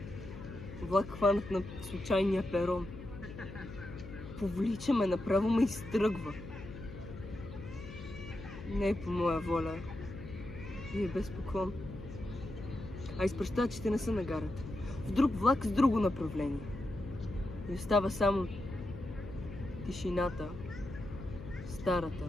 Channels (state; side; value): noise; left; hum, 12 dB below the sound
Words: Влак хванат на случайния перон. Повлича ме, направо ме изтръгва. Не е по моя воля. И е без поклон. А изпращачите не са на гарата. В друг влак с друго направление. И остава само тишината, старата,